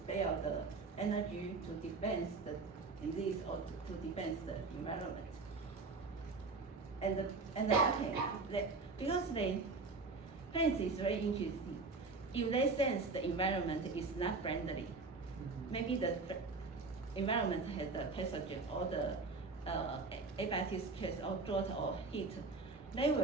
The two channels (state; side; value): quieter; left; 4.0 dB